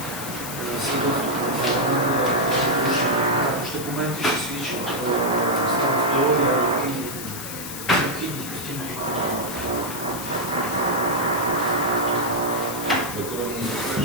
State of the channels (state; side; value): noise; left; hiss, 9 dB below the sound